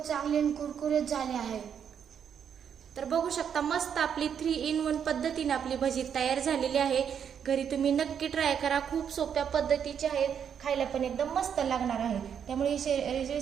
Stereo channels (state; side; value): quieter; left; 8.0 dB